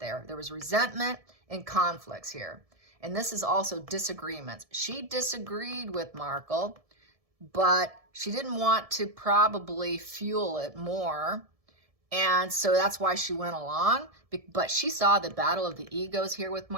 There was resentment and conflicts here. And this is also disagreements. She disagreed with Markle, but she didn't want to probably fuel it more. And so that's why she went along. But she saw the battle of the egos here with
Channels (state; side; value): late; left; 1.7 ms